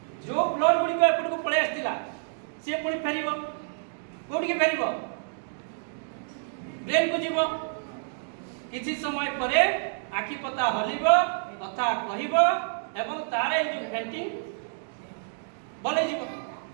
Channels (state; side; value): silent; left; digital silence